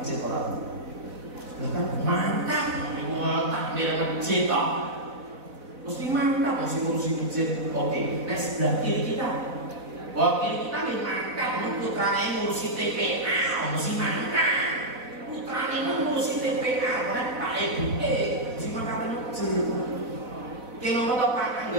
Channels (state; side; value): late; left; 4.0 ms